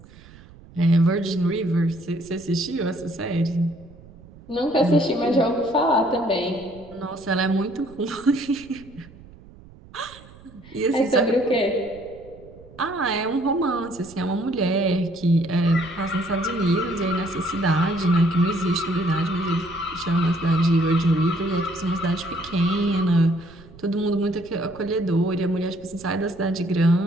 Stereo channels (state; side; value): noise; right; rumble, 22 dB below the sound